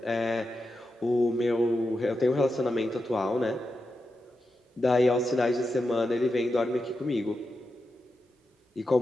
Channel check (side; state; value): both; normal; correlation 0.89